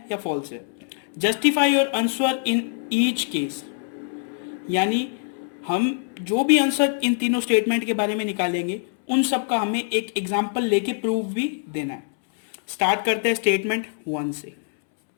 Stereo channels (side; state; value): right; silent; 63 dB below the other